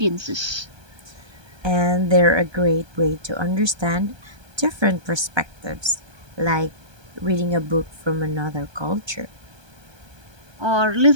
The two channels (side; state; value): left; late; 1.2 ms